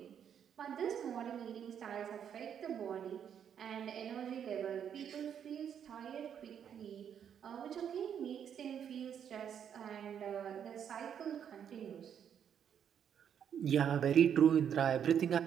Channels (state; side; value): quieter; left; 8.5 dB